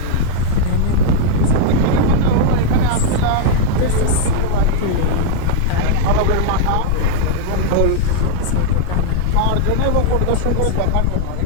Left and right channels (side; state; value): both; different; correlation 0.00